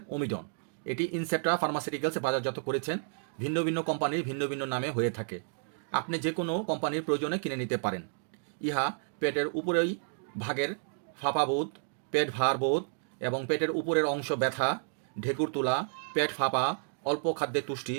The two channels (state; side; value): silent; left; digital silence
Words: ওমিডন। এটি ইনসেপ্টা ফার্মাসিউটিক্যালস বাজারজাত করেছেন। ভিন্ন ভিন্ন কোম্পানির ভিন্ন ভিন্ন নামে হয়ে থাকে। আপনি যে কোনো কোম্পানির প্রয়োজনে কিনে নিতে পারেন। ইহা পেটের উপরেই ভাগের ফাঁপাবোধ, পেট ভার বোধ এবং পেটের উপরের অংশ ব্যথা, ঢেকুর তোলা, পেট ফাঁপা, অল্প খাদ্যে তুষ্টি,